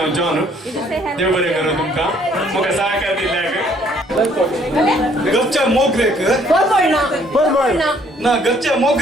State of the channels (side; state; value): both; normal; correlation 0.63